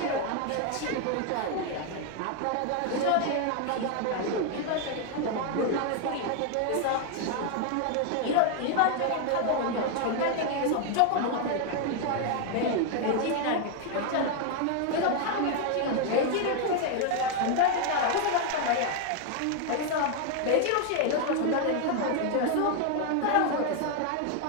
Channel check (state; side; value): different; both; correlation 0.01